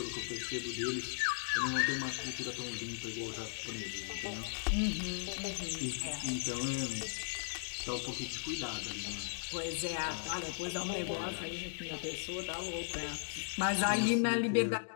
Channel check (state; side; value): silent; right; digital silence